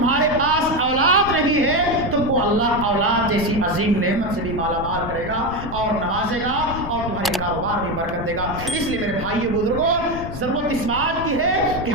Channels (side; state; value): left; noise; rumble, 9 dB below the sound